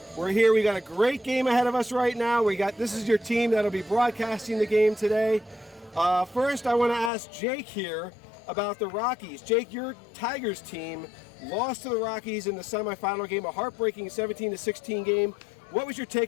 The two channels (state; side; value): drops out; right; at 7.1 s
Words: We're here, we got a great game ahead of us right now. This is your team that'll be broadcasting the game today. First I want to ask Jake here about the Rockies. Jake, your Tigers team lost to the Rockies in the semifinal game, a heartbreaking 17-16 game. What was your